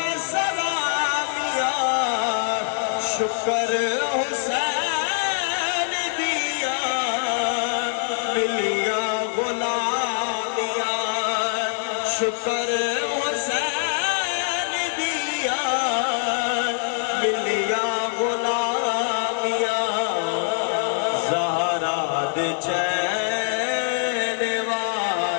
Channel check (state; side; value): silent; right; digital silence